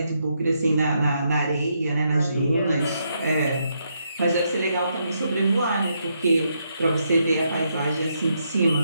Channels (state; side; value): inverted; both; correlation -0.79